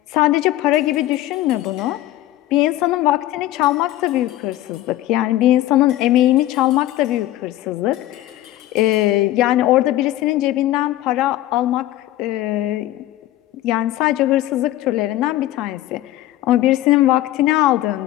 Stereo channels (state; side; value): quieter; right; 14.9 dB